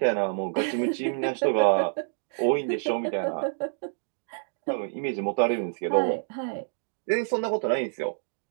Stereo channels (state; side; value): silent; left; digital silence